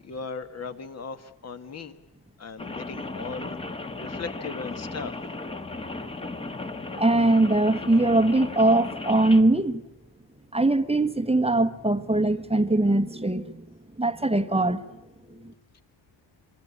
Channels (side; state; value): both; normal; correlation 0.66